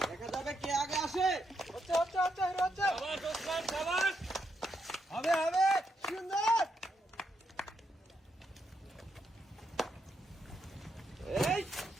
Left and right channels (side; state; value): both; normal; correlation 0.80